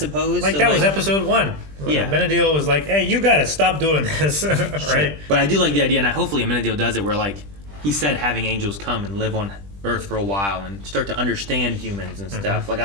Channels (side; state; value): left; late; 20 ms